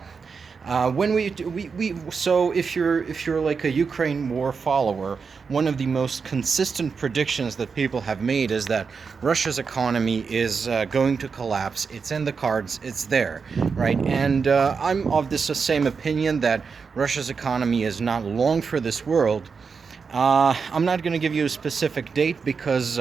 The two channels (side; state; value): left; quieter; 5.4 dB